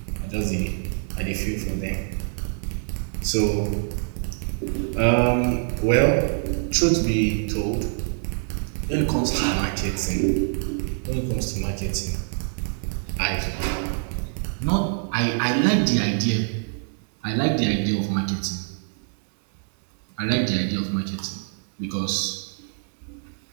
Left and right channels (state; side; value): silent; left; digital silence